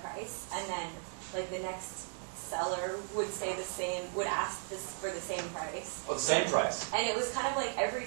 price, and then like the next seller would say the same, would ask this for the same price. Oh, the same price. And it was kind of like every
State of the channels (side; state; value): left; silent; 54 dB below the other